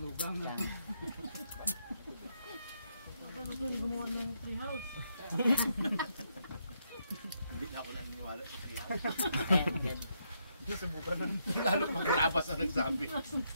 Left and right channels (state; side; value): inverted; both; correlation -0.77